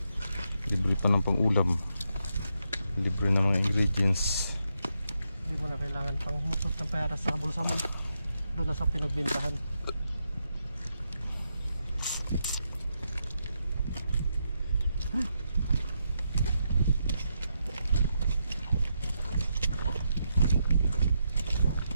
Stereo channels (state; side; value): inverted; both; correlation -0.82